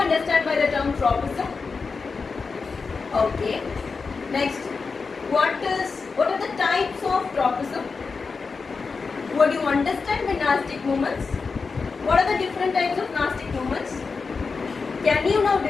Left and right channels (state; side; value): quieter; right; 4.7 dB